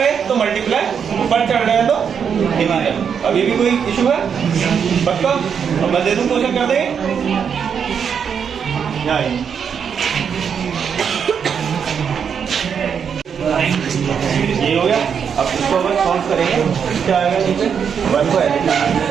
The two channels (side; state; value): left; quieter; 7.2 dB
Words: तो मल्टीप्लाई, ऊपर चढ़ रहे तो डिवाइड। अभी भी कोई इशू है? पक्का? अब मैं दे दूं, क्वेश्चन कर देंगे। ये हो गया। अब इसको अगर सॉल्व करेंगे क्या आएगा? नीचे 1 को ऐसे